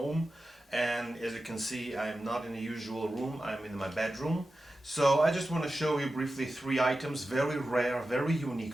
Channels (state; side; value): normal; both; correlation 0.93